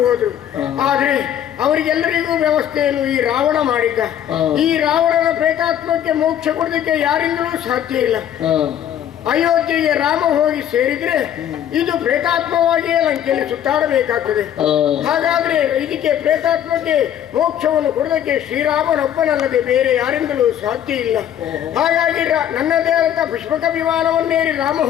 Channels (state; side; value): quieter; right; 10.3 dB